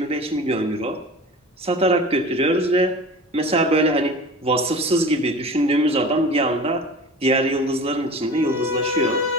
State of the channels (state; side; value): normal; both; correlation 0.37